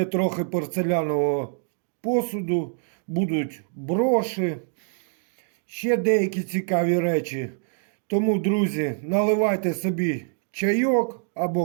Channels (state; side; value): silent; left; 62 dB below the other